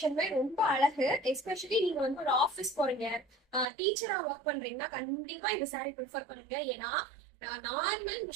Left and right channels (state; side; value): drops out; left; at 3.7 s